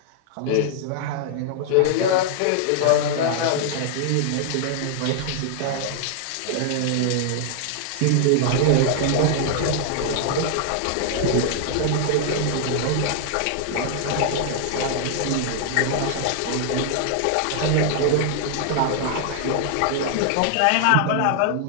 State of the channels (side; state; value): both; different; correlation 0.00